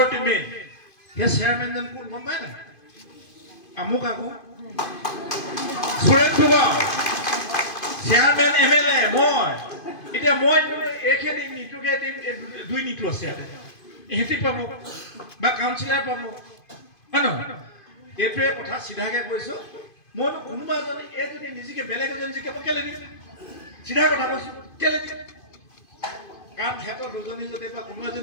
মেইন সেই চেয়াৰমেনজন কোন গম পায় নাই আমুক আকৌ সুৰেশ ফুকন চেয়াৰমেন এমএলএ মই এতিয়া মই একে দিম নিটুকে দিম দুই নিটু আছে ইয়াতে এহেঁতি পাব বা কাউন্সিলাৰ পাব হয় নহয় এইটোৱে কথা চিধাকে কৈছো মই কোনোবা এজনে এই যদি নিজকে বেলেগ এজন জিকে কেলে দিম চিধা কথা কৈছো কেলে দিম কাৰণ সিহঁতৰ দুজনী যদি বা কোনো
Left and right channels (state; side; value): late; right; 2.5 ms